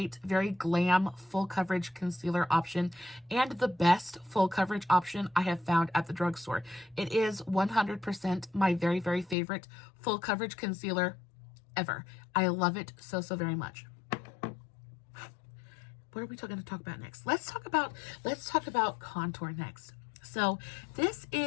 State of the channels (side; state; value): right; drops out; at 9.3 s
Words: very glam full coverage concealer option, and the best full coverage option I have found at the drugstore. It is 100% my very, very favorite full coverage concealer ever. I love it so, so very much. What are we going to talk about next? Let's talk about contour next. So this